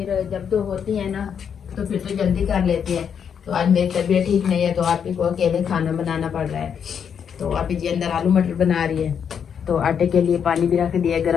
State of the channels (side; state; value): right; quieter; 7.6 dB